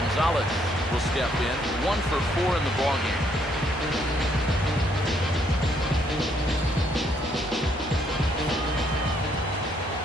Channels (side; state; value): both; normal; correlation 0.70